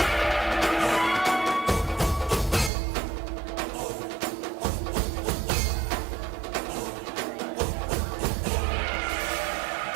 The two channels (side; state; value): left; drops out; at 2.7 s